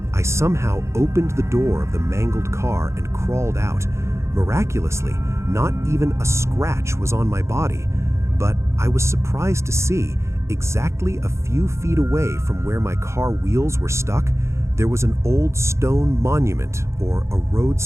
I somehow opened the door of the mangled car and crawled out. Miraculously, not even a scratch was on my body, but I was surprised to see, exactly a few feet away from where my car wheels were stuck, there was an old stone monument or a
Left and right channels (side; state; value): left; late; 0.14 ms